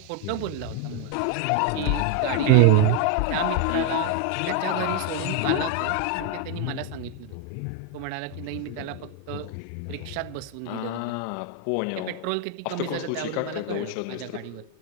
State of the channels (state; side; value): different; both; correlation 0.00